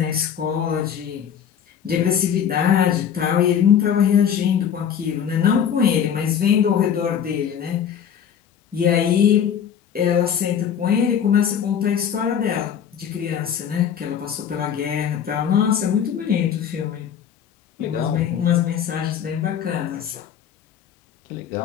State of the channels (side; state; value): right; quieter; 8.5 dB